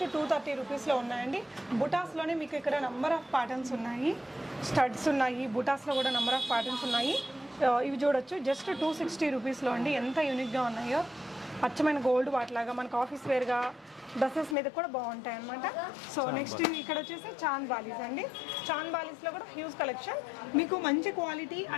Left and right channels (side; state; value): right; drops out; at 14.6 s